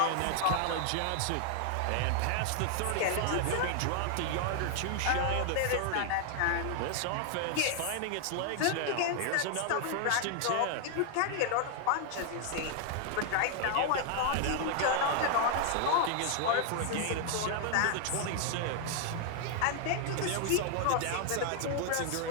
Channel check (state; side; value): different; both; correlation 0.00